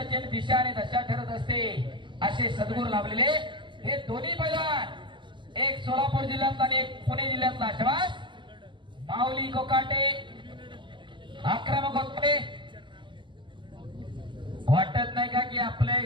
दिशा आणि दशा ठरत असते. असे सद्गुरू लाभलेले हे दोन्ही पैलवान, एक सोलापूर जिल्ह्यातला आणि एक पुणे जिल्ह्यातला. शबास माऊली कोकाटे आक्रमक होते. वाटत नाही का की आपल्या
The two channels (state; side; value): late; left; 0.23 ms